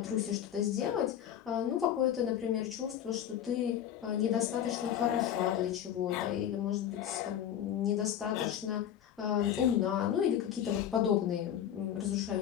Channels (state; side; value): quieter; right; 10.1 dB